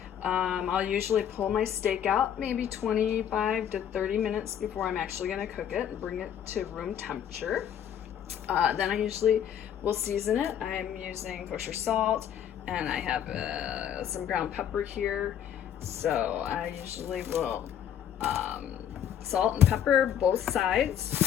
I'll usually pull my steak out maybe 25 to 30 minutes before I'm actually going to cook it and bring it to room temperature. Then I usually will season it. I'm using kosher salt, and I have some ground pepper here. So I usually will salt and pepper both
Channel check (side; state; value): right; quieter; 9.5 dB